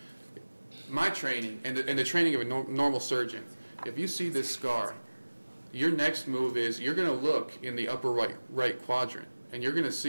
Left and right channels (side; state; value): both; inverted; correlation -1.00